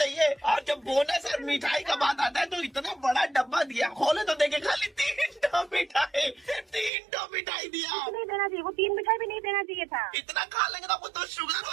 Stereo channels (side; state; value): left; drops out; at 6.9 s